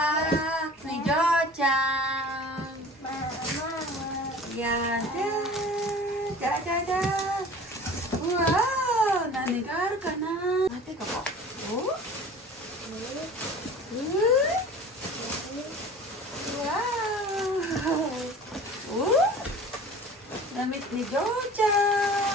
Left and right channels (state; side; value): normal; both; correlation 0.42